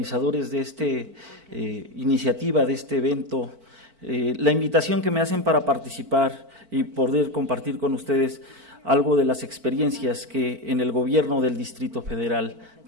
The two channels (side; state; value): left; late; 4.5 ms